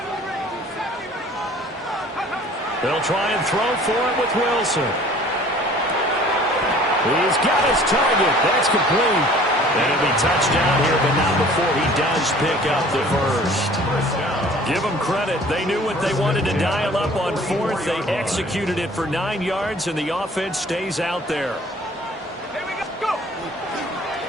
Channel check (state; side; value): normal; both; correlation 0.50